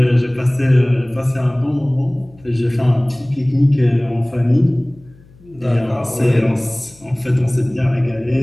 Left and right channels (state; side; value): noise; left; hum, 26 dB below the sound